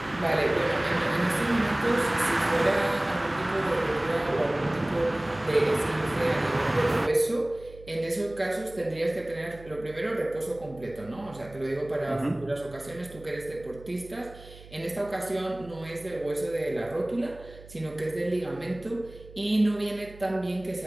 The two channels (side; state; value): right; noise; hum, 19 dB below the sound